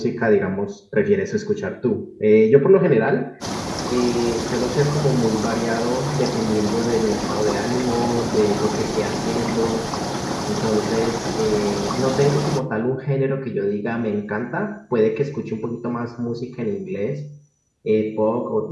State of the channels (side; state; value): both; identical; correlation 1.00